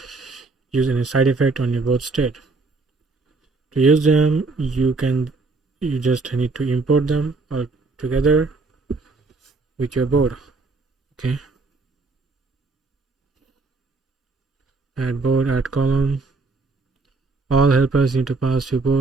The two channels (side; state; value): left; quieter; 3.8 dB